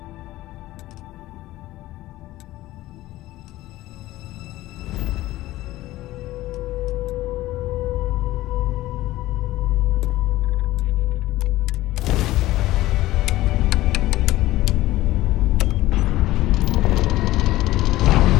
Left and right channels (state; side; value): quieter; right; 16.6 dB